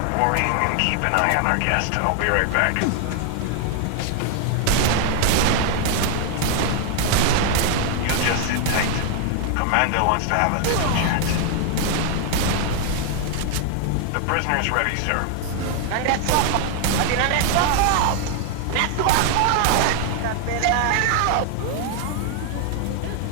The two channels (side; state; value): both; different; correlation 0.00